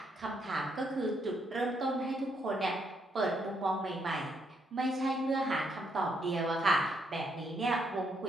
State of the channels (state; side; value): normal; both; correlation 0.75